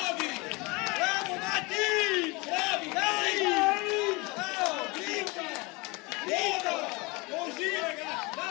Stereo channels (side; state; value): right; quieter; 26.1 dB